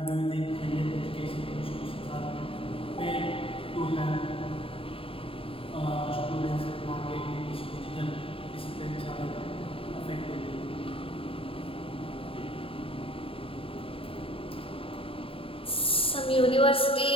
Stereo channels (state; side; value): late; right; 0.27 ms